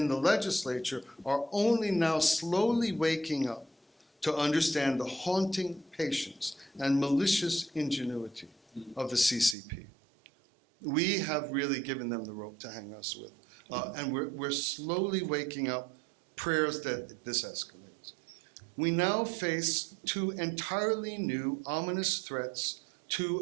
the legislature are only now slowly waking up to understand the haunting patience and malicious ingenuity of the CCP. We have really given them the rope to hang us with. And we're slowly waking up, prayers that this escalates. We now face two entirely new ominous threats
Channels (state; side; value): drops out; left; at 9.6 s